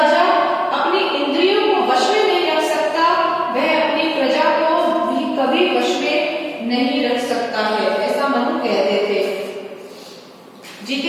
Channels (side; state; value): both; identical; correlation 1.00